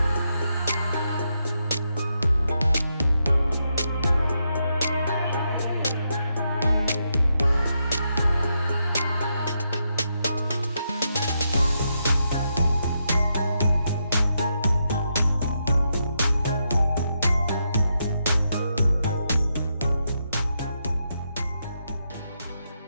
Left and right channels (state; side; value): inverted; both; correlation -0.82